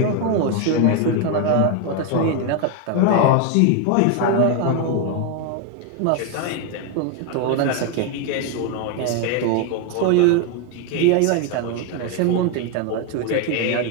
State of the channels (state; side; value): different; both; correlation 0.01